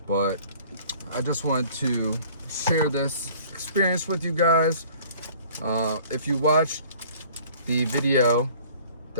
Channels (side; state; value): both; inverted; correlation -0.51